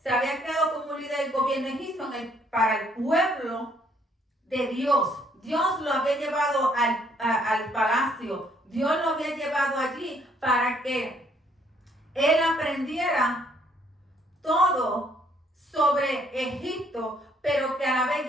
se había creado como líder del gobierno egipcio para el pueblo de Dios. Dios lo había llevado al palacio. Dios lo había llevado allí para que él aprendiera todo sobre Egipto, pero que a la vez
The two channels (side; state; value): both; normal; correlation 0.66